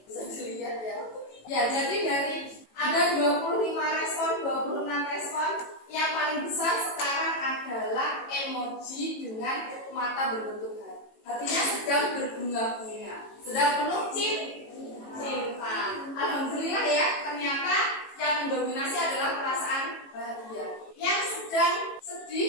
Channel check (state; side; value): late; right; 18 ms